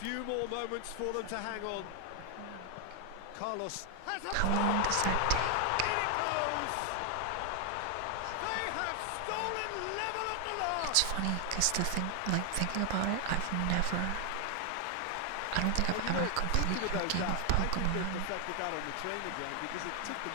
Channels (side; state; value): both; different; correlation 0.00